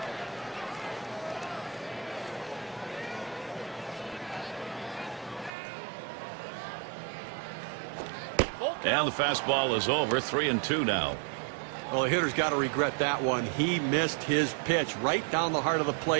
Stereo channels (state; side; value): drops out; left; at 5.5 s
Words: And the fastball is over. 3-2 now. Well, the hitter's got to regret that one. He missed his pitch right down the heart of the